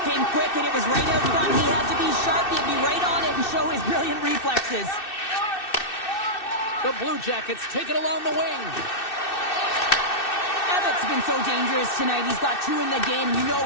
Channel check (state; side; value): late; right; 2.6 ms